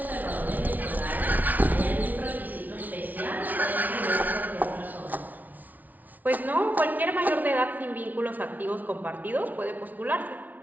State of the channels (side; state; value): left; late; 0.078 ms